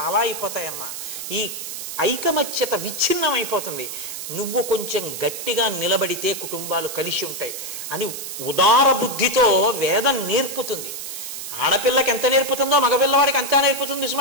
అయిపోతాయమ్మా. ఈ ఐకమత్యత విచ్ఛిన్నం అయిపోతుంది. నువ్వు కొంచెం గట్టిగా నిలబడితే కుటుంబాలు కలిసి ఉంటాయి అని ఉదార బుద్ధితో వేదం నేర్పుతుంది. ఆడపిల్లకి ఎంత నేర్పుతుందో మగపిల్లవాడికి అంతా నేర్పుతుంది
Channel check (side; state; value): right; noise; hiss, 8 dB below the sound